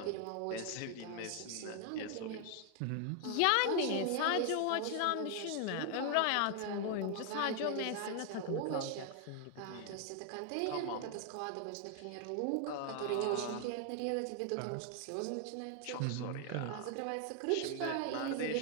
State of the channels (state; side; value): different; both; correlation 0.00